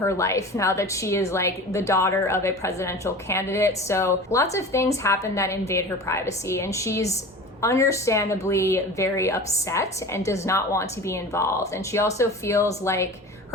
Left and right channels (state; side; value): normal; both; correlation 0.36